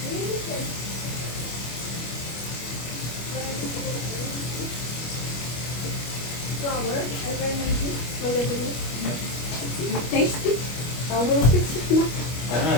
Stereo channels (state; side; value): late; right; 25 ms